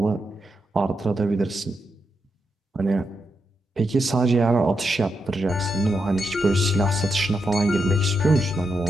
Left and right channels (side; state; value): both; normal; correlation 0.84